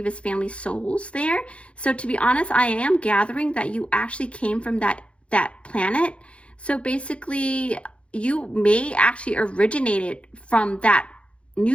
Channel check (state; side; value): late; right; 0.060 ms